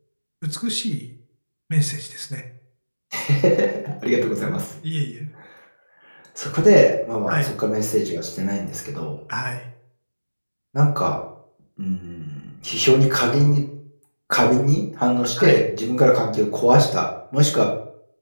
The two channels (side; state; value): both; inverted; correlation -1.00